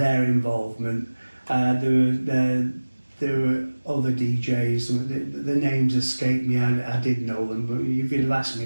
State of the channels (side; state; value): both; inverted; correlation -1.00